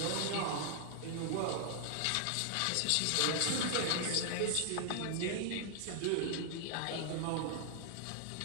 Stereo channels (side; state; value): both; different; correlation 0.00